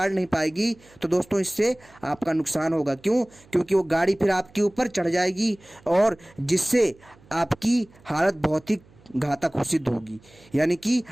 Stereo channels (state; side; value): noise; right; hum, 27 dB below the sound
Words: नहीं पाएगी, तो दोस्तों इससे आपका नुकसान होगा। क्यों? क्योंकि वो गाड़ी फिर आपके ऊपर चढ़ जाएगी, और जिससे आपकी हालत बहुत ही घातक सिद्ध होगी, यानी कि